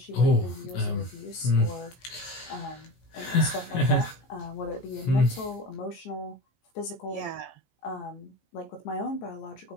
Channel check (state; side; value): late; right; 15 ms